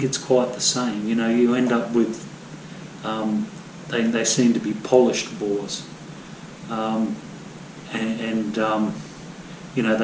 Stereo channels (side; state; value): both; identical; correlation 1.00